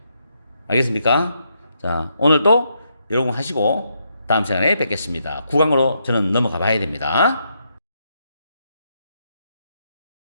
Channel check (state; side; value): inverted; both; correlation -0.79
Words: 알겠습니까? 자, 오늘도 여러분 하시고 다음 시간에 뵙겠습니다. 9강으로 저는 넘어가 봐야 됩니다.